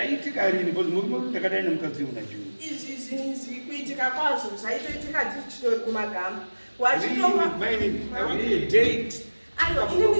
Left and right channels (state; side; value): inverted; both; correlation -1.00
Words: rini because muri ndakadai nemukadzi unajuu Izvi zvinhu kuitika kwazvo zvaitoitika tichitori kumagama maini date